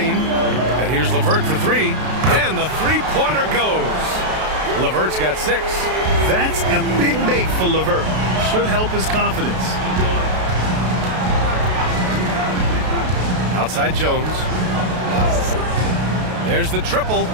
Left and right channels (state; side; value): late; left; 32 ms